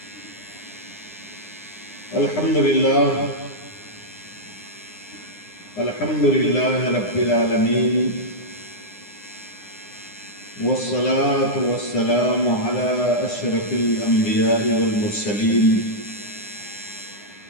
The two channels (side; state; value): right; late; 9.8 ms